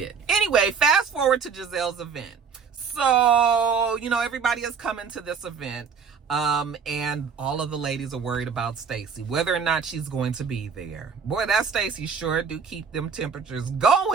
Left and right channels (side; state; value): left; quieter; 6.0 dB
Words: Anyway, fast forward to Giselle's event. So, you know, everybody is coming to this event. And all of the ladies are worried about Stacy, whether or not she's going to be there. Boy, that Stacy sure do keep them temperatures